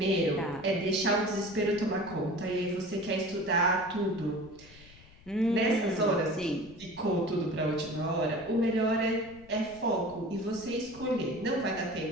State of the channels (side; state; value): left; noise; rumble, 22 dB below the sound